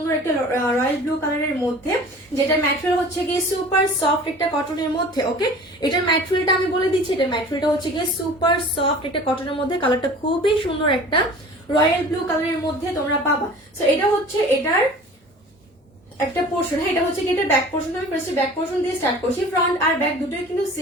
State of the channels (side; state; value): both; normal; correlation 0.43